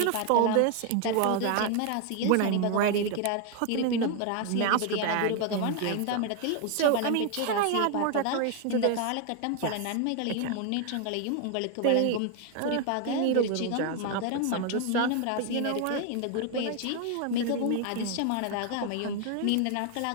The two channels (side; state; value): both; different; correlation 0.01